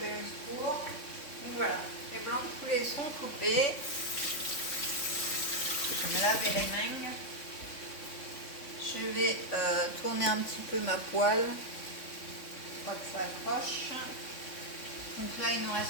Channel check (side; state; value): right; late; 3.6 ms